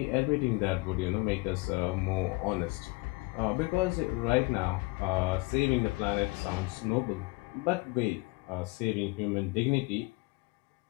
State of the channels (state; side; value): quieter; right; 25.2 dB